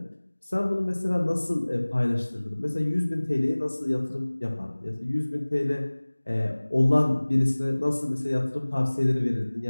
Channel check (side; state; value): both; inverted; correlation -1.00